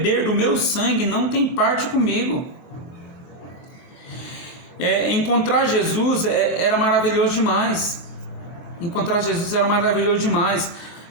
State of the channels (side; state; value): right; late; 23 ms